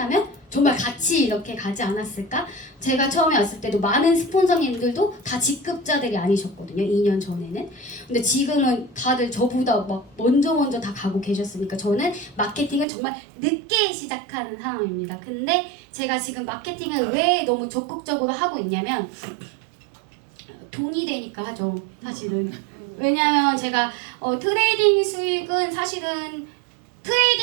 정말 같이 이렇게 가지 않았을까? 제가 처음에 왔을 때도 많은 스폰서님들도 다 직급자들이 아니셨거든요. 2년 전에는. 근데 지금은 다들 저보다 막 먼저 다 가고 계셨으니까 저는 마케팅을 정말 늦게 시작하는 사람입니다. 근데 제가 지금 마케팅을 왜 너무 적극적으로 하고 있냐면 돈이 되니까 하죠. 사실은. 왜냐면 제가 트레이딩 수익은 사실은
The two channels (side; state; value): left; drops out; at 12.9 s